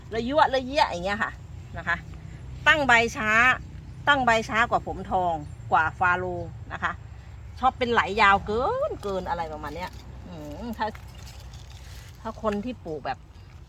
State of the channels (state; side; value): identical; both; correlation 1.00